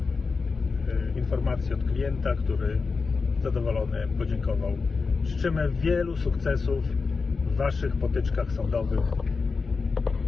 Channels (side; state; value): right; quieter; 4.6 dB